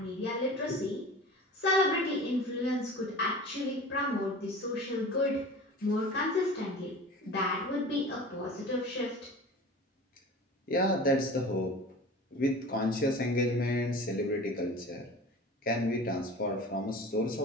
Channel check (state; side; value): normal; both; correlation 0.38